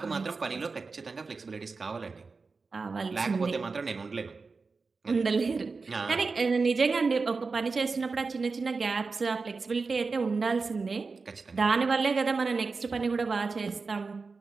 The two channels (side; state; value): left; quieter; 4.3 dB